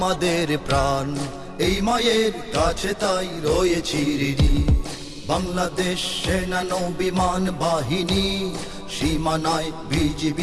প্রাণ, এই মায়ের কাছে তাই রয়েছি ঋণী। বাংলাদেশ সেনা নৌবিমান বাহিনী, সীমানায়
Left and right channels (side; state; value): both; identical; correlation 1.00